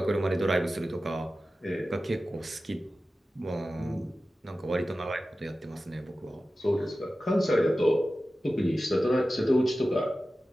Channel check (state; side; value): normal; both; correlation 0.94